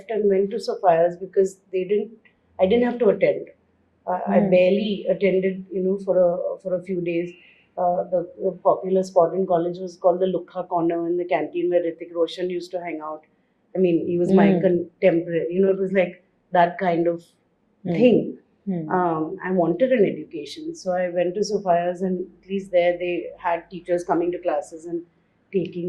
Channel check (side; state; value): both; identical; correlation 1.00